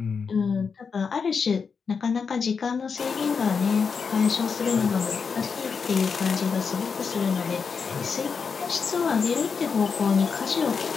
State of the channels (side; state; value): right; quieter; 5.7 dB